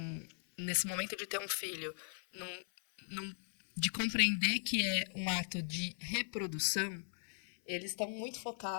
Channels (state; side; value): silent; right; 52 dB below the other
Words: nesse momento de ter um filho, de compreender que é um ato de reprodução, eles estão muito